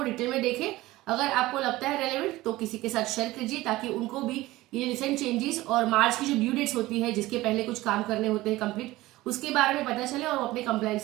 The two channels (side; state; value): left; quieter; 18.1 dB